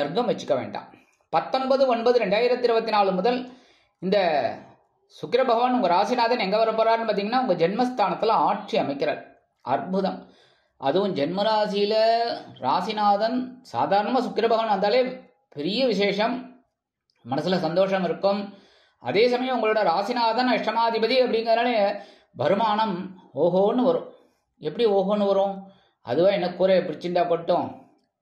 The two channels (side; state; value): both; identical; correlation 1.00